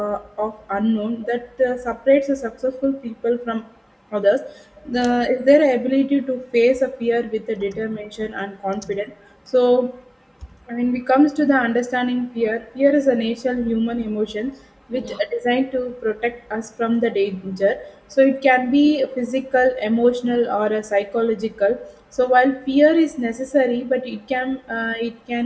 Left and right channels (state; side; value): identical; both; correlation 1.00